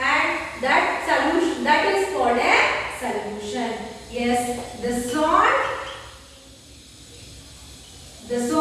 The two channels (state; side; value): identical; both; correlation 1.00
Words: that solution, that is called a solution. Yes, the salt